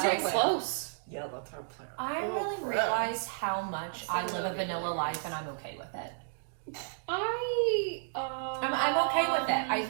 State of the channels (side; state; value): left; silent; digital silence